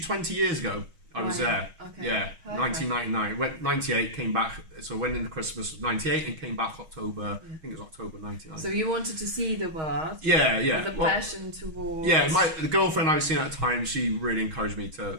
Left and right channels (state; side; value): late; left; 6.3 ms